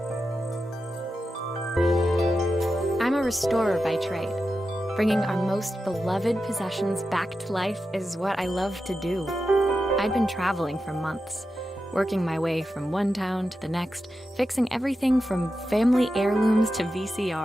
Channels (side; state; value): both; normal; correlation 0.90